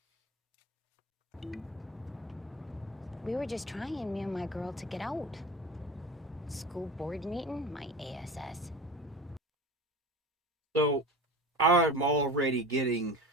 We were just trying, me and my girl, to get out. School board meeting, my ASS. So, I'm already getting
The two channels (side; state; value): both; normal; correlation 0.32